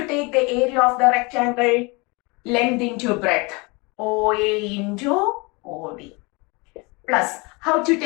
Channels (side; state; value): right; quieter; 27.8 dB